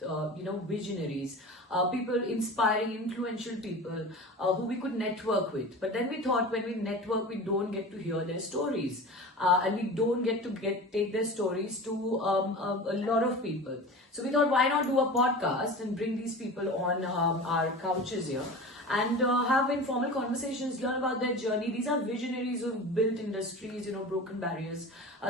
visionaries, people, inspiring, influential people who we could network with. But then we thought when we network, we don't get to hear their stories. And we don't get to take their stories to a lot of people. So we thought, why not do a podcast and bring these people on our couches here and have informal conversations, learn about their journey. These are visionaries who've built industries, broken barriers.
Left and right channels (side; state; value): both; normal; correlation 0.34